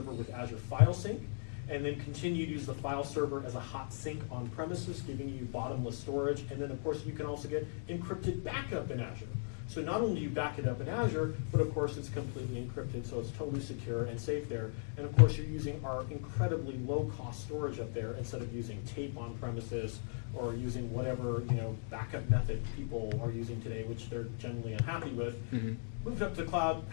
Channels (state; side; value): silent; right; digital silence